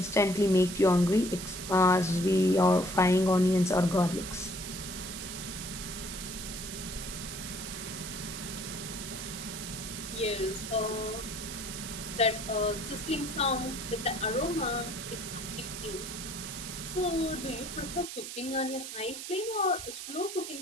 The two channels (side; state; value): right; noise; hiss, 8 dB below the sound